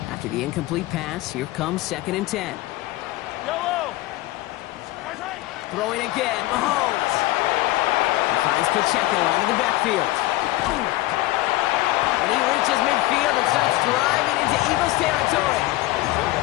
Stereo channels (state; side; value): quieter; right; 17.8 dB